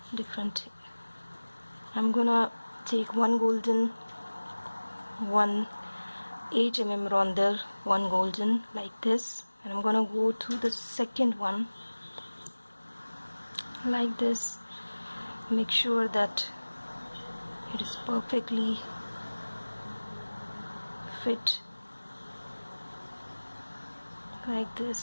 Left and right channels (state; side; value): inverted; both; correlation -1.00